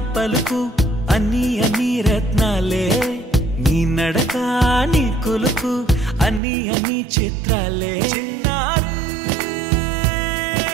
పలుకు అన్ని అన్ని రత్నాలే నీ నడక నీ కులుకు అన్ని అన్ని చిత్రాలే చిన్నారు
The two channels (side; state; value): left; drops out; at 6.4 s